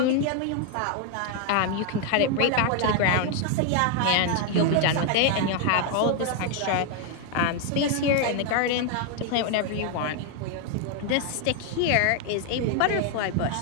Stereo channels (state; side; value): different; both; correlation 0.01